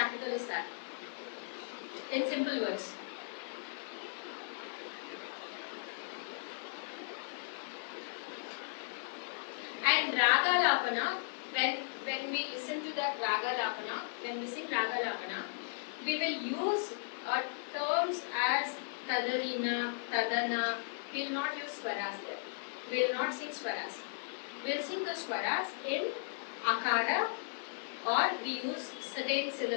is that. In simple words. And raga lapana, when we listen to that raga lapana, when we sing raga lapana, we will use terms as tadarina, tadana. We will not use swaras there. We will not sing swaras. We will sing the swaras in akara, or we use certain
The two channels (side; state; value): right; silent; 54 dB below the other